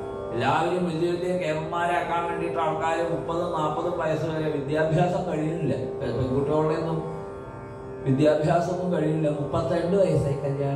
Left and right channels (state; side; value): identical; both; correlation 1.00